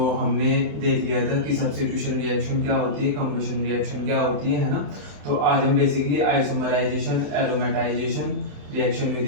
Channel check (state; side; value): late; left; 28 ms